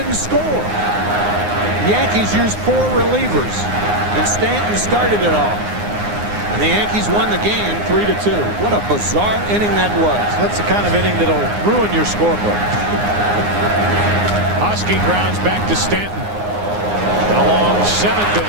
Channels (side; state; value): left; late; 9.7 ms